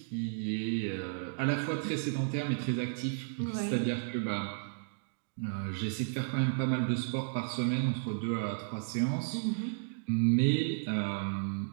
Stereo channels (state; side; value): silent; left; digital silence